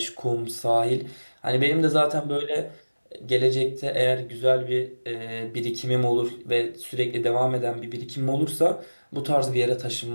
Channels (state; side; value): inverted; both; correlation -1.00